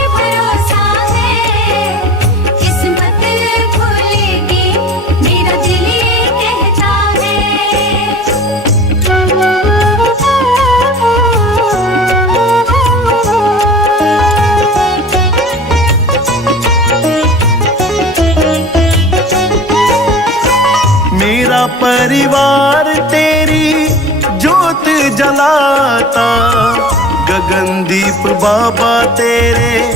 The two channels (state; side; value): normal; both; correlation 0.39